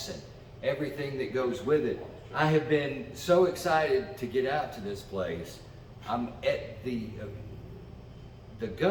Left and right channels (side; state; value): both; identical; correlation 1.00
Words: and everything that goes with it. I have been so excited to get out to this place. I'm at the